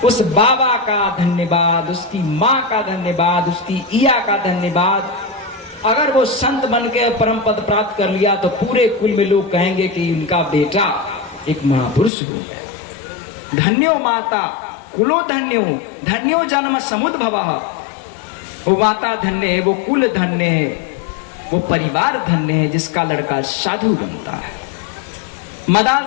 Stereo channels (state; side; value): drops out; right; at 12.1 s